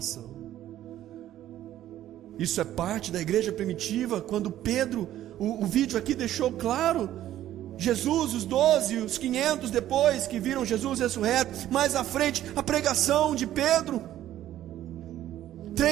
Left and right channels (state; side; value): quieter; left; 12.8 dB